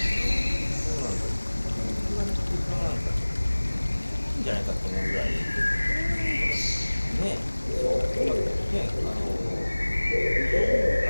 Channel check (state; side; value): inverted; both; correlation -1.00